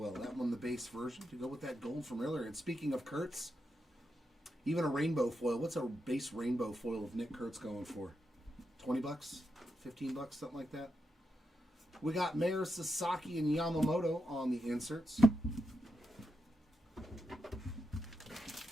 That one, the base version, to go with that gold from earlier. And speaking of Kurtz, even a rainbow foil. What's a base rainbow foil of Nick Kurtz going for? 20 bucks? 15 bucks, something like that. We got Mayor Sasaki and Yamamoto on the inserts.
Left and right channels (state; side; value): normal; both; correlation 0.86